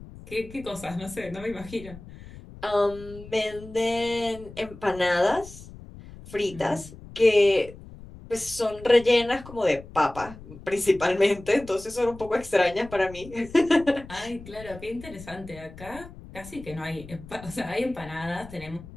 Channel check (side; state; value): left; noise; rumble, 17 dB below the sound